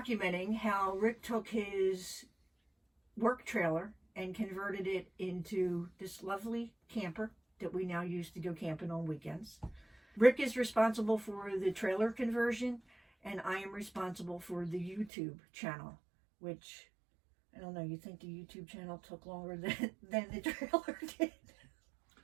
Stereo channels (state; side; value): drops out; left; at 15.1 s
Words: how Rick took his work trailer and converted it into this lovely camper that we now use to go camping on weekends. Rick is responsible for the trailer conversion, and I am responsible for the YouTube channel, which, I don't know, you think the YouTube channel took longer than the trailer did?